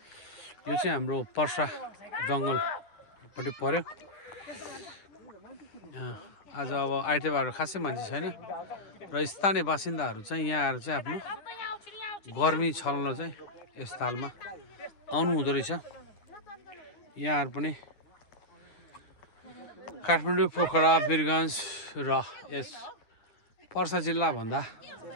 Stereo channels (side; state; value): right; late; 10 ms